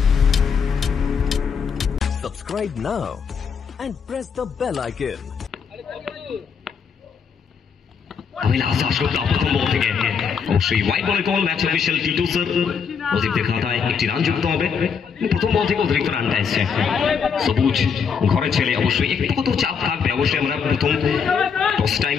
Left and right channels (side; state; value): right; quieter; 6.4 dB